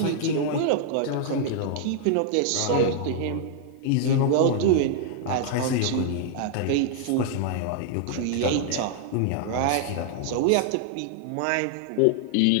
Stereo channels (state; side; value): different; both; correlation -0.01